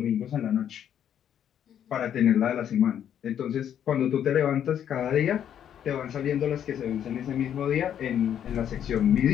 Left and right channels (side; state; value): right; quieter; 9.6 dB